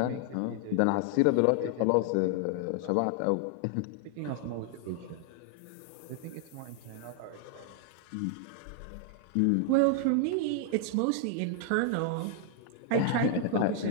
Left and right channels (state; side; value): different; both; correlation 0.00